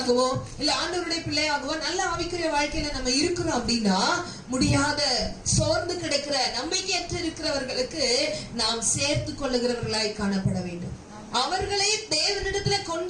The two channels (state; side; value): identical; both; correlation 1.00